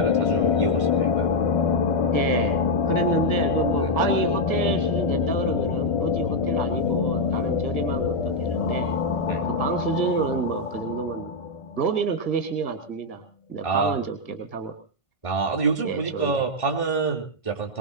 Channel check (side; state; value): right; late; 1.6 ms